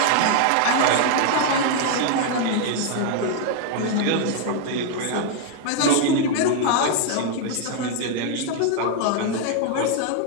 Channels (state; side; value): different; both; correlation 0.00